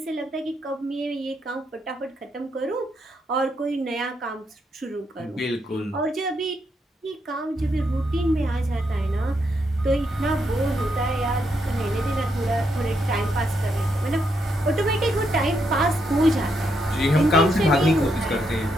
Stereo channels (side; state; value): both; normal; correlation 0.79